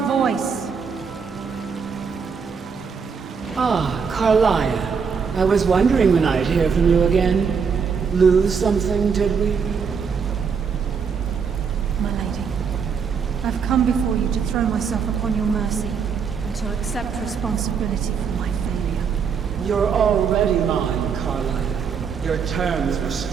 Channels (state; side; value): quieter; left; 6.2 dB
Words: Ah, Carlaia. I was wondering when I'd hear from you again. Lose something, did we? My lady, I've come before you to throw myself upon your mercy and to accept responsibility for my failure. You're already mine, Carlaia. Your terms were